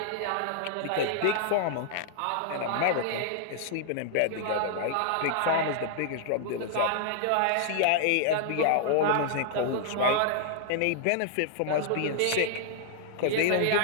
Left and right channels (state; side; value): different; both; correlation -0.01